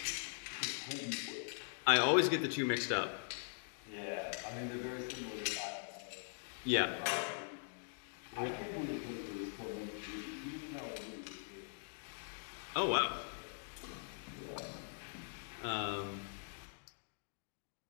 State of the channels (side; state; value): right; silent; digital silence